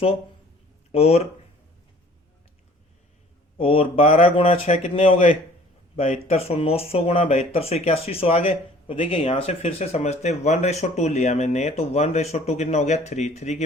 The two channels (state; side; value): normal; both; correlation 0.52